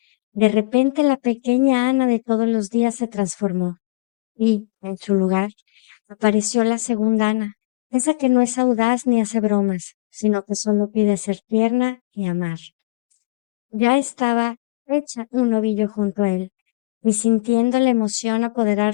de repente la pequeña Ana de todos los días se transformó y, en su lugar, apareció la segunda Ana, esa que no es audaz ni hace bromas, sino que solo pide ser tierna y amar. Ya estaba hecha un ovillo junto a él, y sintiendo la emoción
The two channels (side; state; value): right; quieter; 23.1 dB